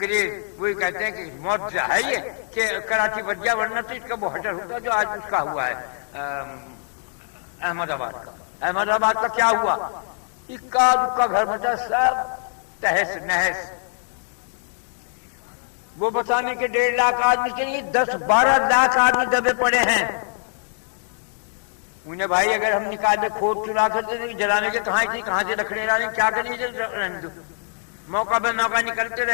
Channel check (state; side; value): silent; right; digital silence